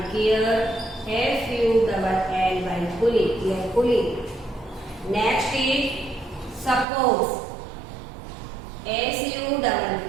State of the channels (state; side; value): drops out; left; at 6.9 s